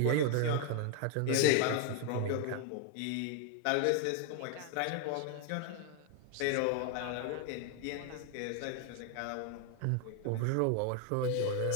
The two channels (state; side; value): different; both; correlation 0.01